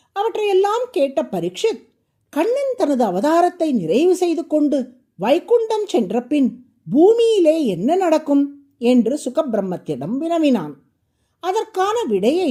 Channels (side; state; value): both; identical; correlation 1.00